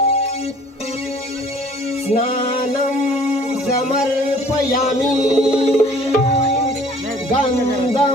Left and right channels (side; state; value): both; normal; correlation 0.53